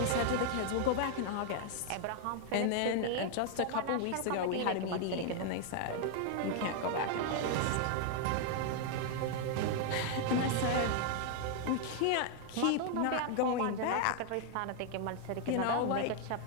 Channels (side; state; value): both; different; correlation 0.00